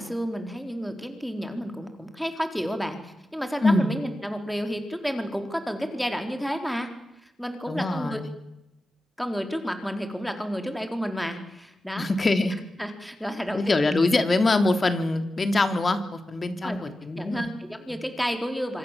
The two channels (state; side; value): normal; both; correlation 0.93